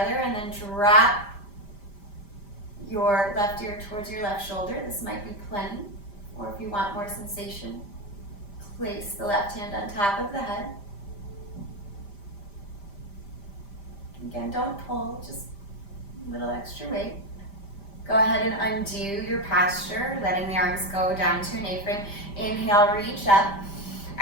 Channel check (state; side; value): late; right; 5.0 ms